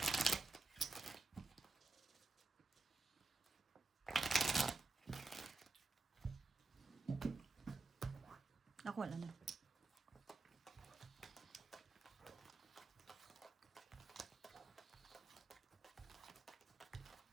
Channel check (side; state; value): left; quieter; 3.4 dB